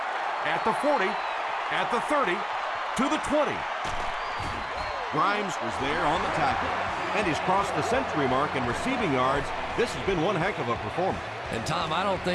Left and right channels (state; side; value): identical; both; correlation 1.00